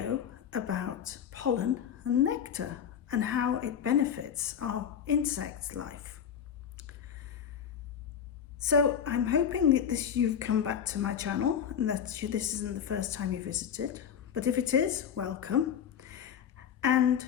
about pollen and nectar and how it benefits our insect life. So I'm hoping that you've come back to my channel and that this isn't the first time you visited, but if it is, welcome. And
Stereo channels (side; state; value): right; quieter; 8.3 dB